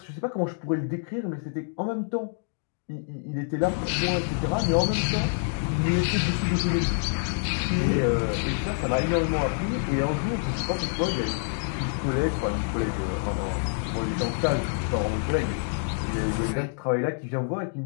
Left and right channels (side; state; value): right; silent; digital silence